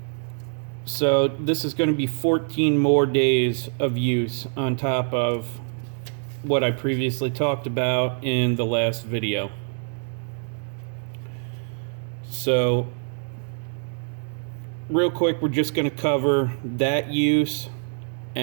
So this is going to be 14 more days of use on top of what I previously talked about in the last video. So real quick, we're just going to cover that use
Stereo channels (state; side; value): silent; left; 55 dB below the other